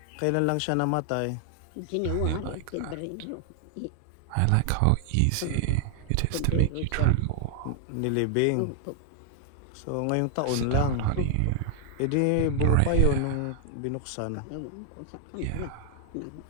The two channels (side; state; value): both; different; correlation 0.00